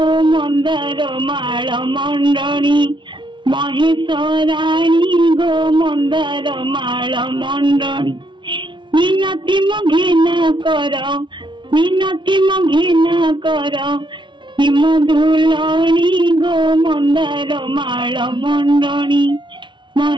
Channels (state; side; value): late; left; 0.24 ms